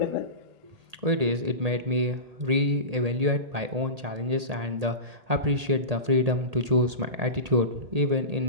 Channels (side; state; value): left; late; 1.8 ms